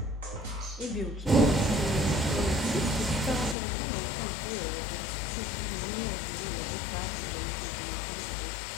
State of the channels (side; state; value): right; drops out; at 3.6 s